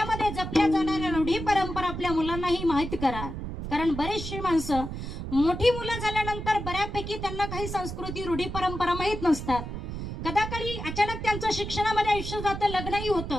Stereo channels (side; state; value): right; noise; rumble, 6 dB below the sound